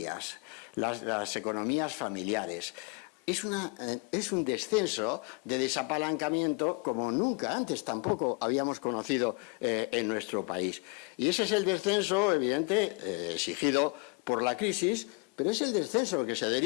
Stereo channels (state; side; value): quieter; right; 30.5 dB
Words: las economías familiares. Es un descenso de desapalancamiento como nunca antes tampoco habíamos conocido en nuestro país. Y ese es el descenso, evidente, exigido por la crisis, pero es el descenso que se